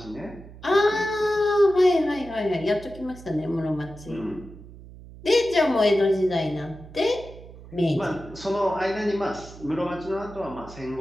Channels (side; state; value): right; noise; hum, 17 dB below the sound